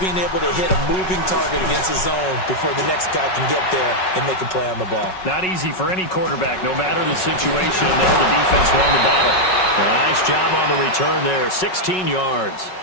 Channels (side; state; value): right; late; 5.4 ms